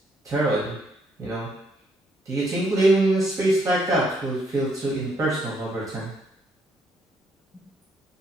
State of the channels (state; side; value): normal; both; correlation 0.72